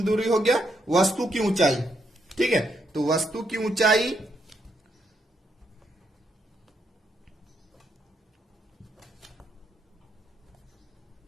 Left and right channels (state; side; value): normal; both; correlation 0.78